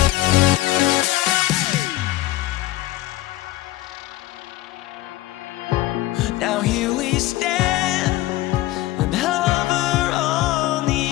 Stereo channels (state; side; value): quieter; right; 16.8 dB